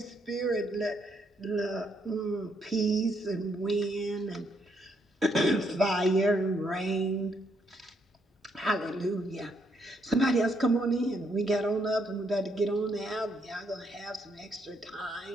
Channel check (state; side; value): normal; both; correlation 0.74